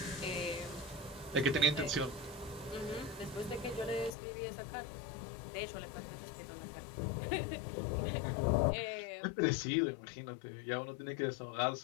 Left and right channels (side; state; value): right; drops out; at 4.2 s